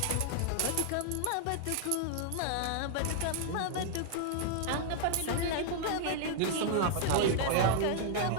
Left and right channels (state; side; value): different; both; correlation -0.01